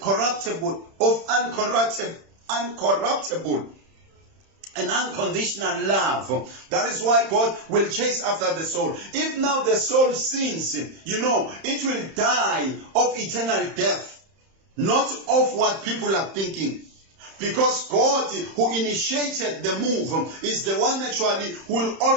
and unconditional love. That is why God will chase after the soul. If now the soul sins, it will die of eternal death. Not of what people are thinking. Because God, who initiated the move, is the one actually who will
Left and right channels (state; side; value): late; left; 31 ms